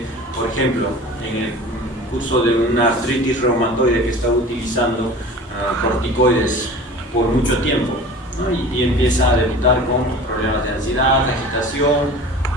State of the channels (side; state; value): both; normal; correlation 0.39